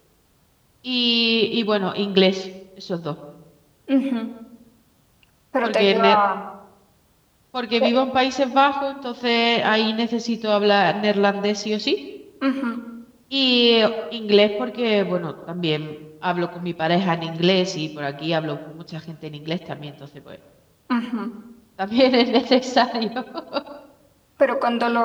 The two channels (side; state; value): both; identical; correlation 1.00